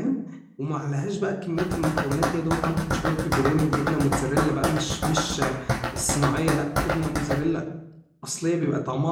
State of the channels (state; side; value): identical; both; correlation 1.00